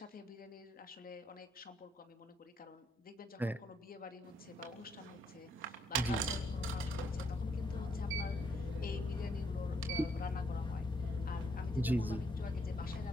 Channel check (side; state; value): both; normal; correlation 0.73